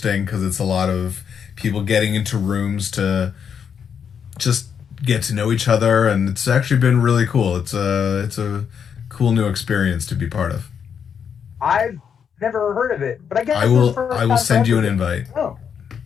because it's a lot of people getting into rooms to just get to know each other, and it's actually been really cool. It's a cool new experience to be part of. I've never heard of it, but I guess I will send you an invite. Oh,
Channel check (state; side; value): quieter; right; 7.4 dB